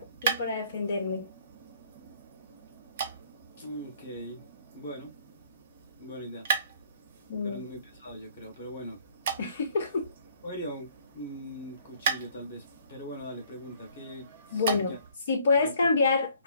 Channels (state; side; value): inverted; both; correlation -0.60